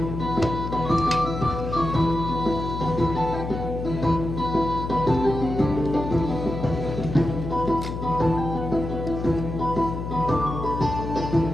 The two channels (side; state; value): left; noise; hum, 5 dB below the sound